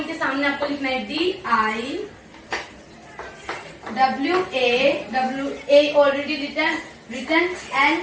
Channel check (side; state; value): both; identical; correlation 1.00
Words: सामने आपको लिखना है DIWA already written